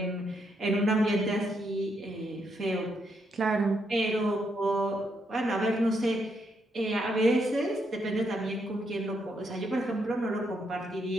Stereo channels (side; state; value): both; normal; correlation 0.78